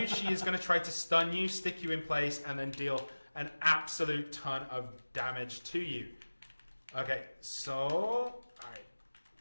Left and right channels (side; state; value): both; inverted; correlation -1.00